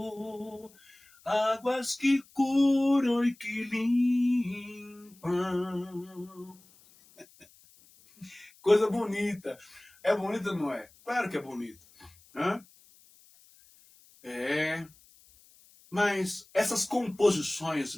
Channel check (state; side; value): noise; left; hiss, 27 dB below the sound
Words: águas que curam e que limpam. Coisa bonita. É bonita, não é? Claro que é bonito. Hã? É. Mas essas composições